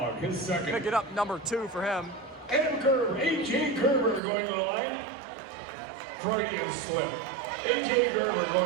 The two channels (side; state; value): left; drops out; at 4.2 s